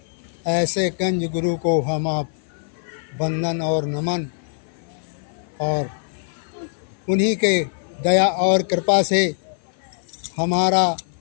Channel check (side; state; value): right; silent; 56 dB below the other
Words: ऐसे कंज गुरु को हम आप वंदन और नमन और उन्हीं के दया और कृपा से हमारा